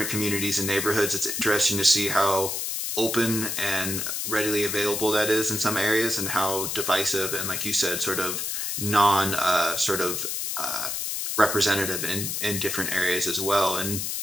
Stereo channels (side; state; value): left; noise; hiss, 2 dB below the sound